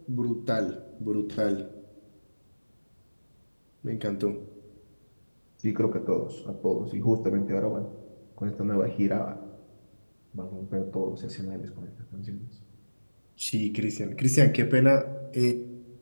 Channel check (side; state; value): both; inverted; correlation -1.00